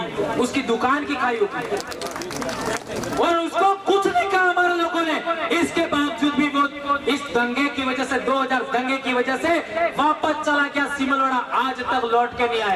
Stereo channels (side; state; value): both; identical; correlation 1.00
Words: उसकी दुकान की खाई होगी, और उसको कुछ नहीं कहा हमारे लोगों ने। इसके बावजूद भी वो इस दंगे की वजह से, 2000 दंगे की वजह से वापस चला गया सिमलवाड़ा, आज तक लौट के नहीं